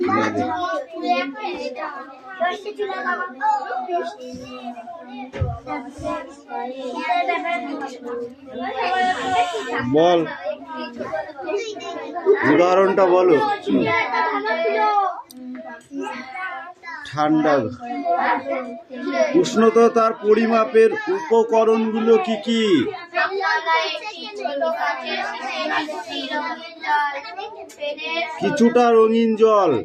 বল, উদাহরণটা বলো। ঠান্ডা। উষ্ণতার পরিমাপের উপকরণগুলো কি কি? কিছুটা রঙিন জল,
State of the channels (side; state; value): both; identical; correlation 1.00